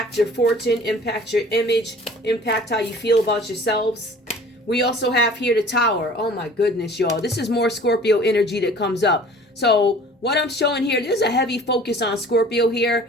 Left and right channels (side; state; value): both; normal; correlation 0.47